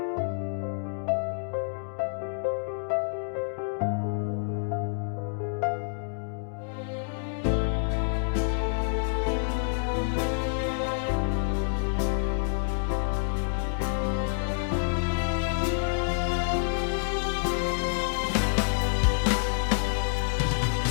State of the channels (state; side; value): silent; right; digital silence